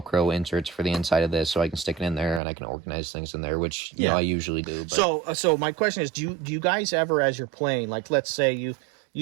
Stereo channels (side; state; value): left; drops out; at 2.4 s